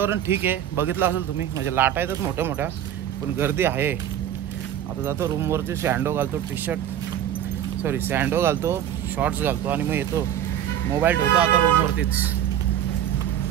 ठीक आहे, बघितलं असेल तुम्ही. म्हणजे लाटा येतात मोठ्या मोठ्या, पण गर्दी आहे. आता जातो रूमवरती, सँडो घालतो, सँडो घालतो, शॉर्ट्स घालतो आणि मग येतो. मोबाईल ठेवतो आता रूमवरतीच.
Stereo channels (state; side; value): quieter; left; 10.6 dB